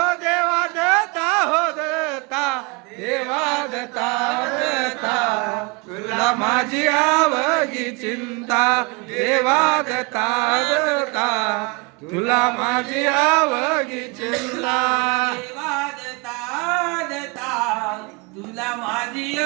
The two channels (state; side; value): quieter; left; 29.3 dB